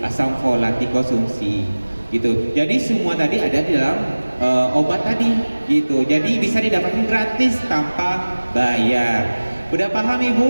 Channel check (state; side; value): inverted; both; correlation -1.00